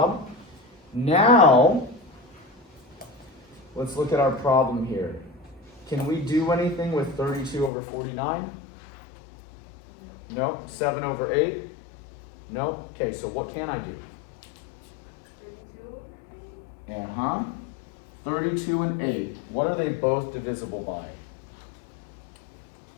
Now, let's look at our problem here. Can we do anything with 32 over 49? No. 7 over 8? No. Okay, so what can I do? 32 and 8. What are they both divisible by?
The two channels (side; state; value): right; drops out; at 7.7 s